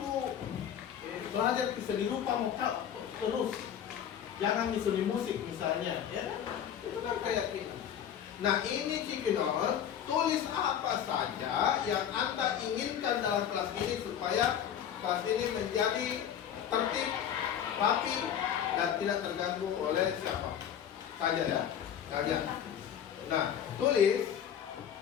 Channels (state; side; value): quieter; right; 9.3 dB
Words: belajar ke seni rupa mau terus. Jangan di seni musik misalnya, ya kan? Itu kan kayak gitu. Nah ini Cipinon, tulis apa saja yang Anda inginkan dalam kelas ini supaya kelas ini menjadi tertib, rapi, dan tidak terganggu oleh siapa saja ya. Saja. Nah, tulis